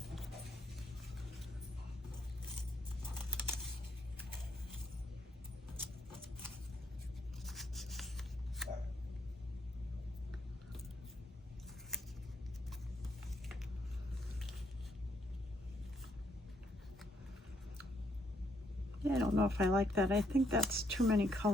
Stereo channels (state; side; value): normal; both; correlation 0.73